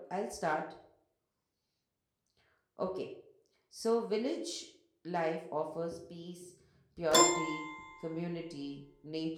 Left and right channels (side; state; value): both; identical; correlation 1.00